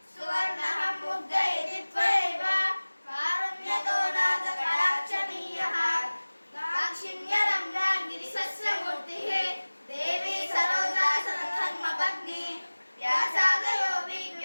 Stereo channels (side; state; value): both; inverted; correlation -1.00